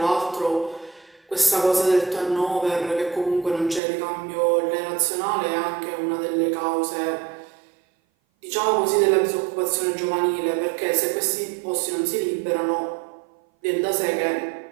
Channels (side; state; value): left; drops out; at 3.8 s